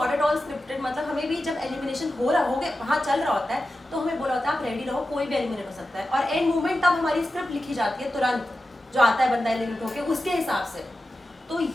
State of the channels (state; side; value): normal; both; correlation 0.93